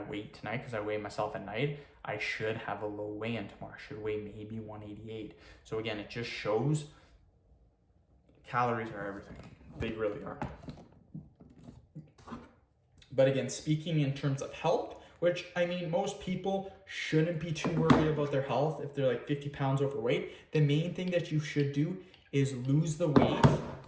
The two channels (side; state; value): both; identical; correlation 1.00